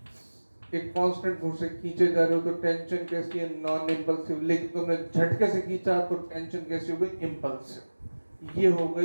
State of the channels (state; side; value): inverted; both; correlation -1.00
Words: एक कांस्टेंट फोर्स से खींचे जा रहे हो तो टेंशन कैसी है? Non impulsive. लेकिन तुमने झटके से खींचा तो टेंशन कैसी हो गई? इंपल्सिव। ये हो